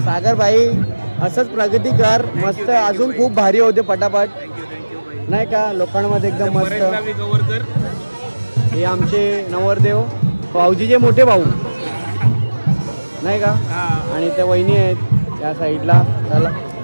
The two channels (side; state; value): both; inverted; correlation -1.00